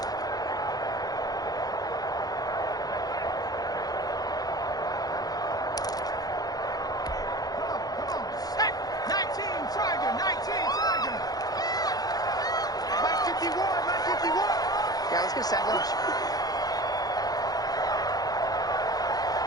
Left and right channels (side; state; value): right; late; 0.19 ms